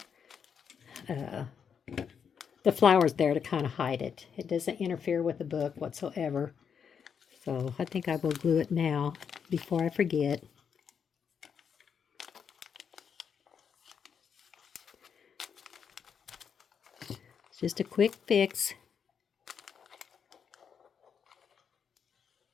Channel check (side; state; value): right; quieter; 7.1 dB